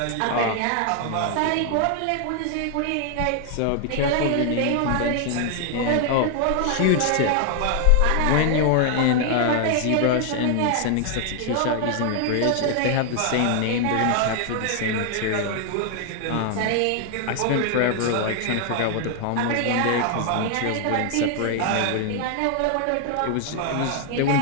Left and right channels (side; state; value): both; different; correlation 0.00